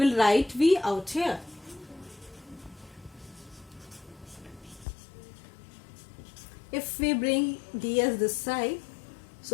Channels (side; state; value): right; drops out; at 4.9 s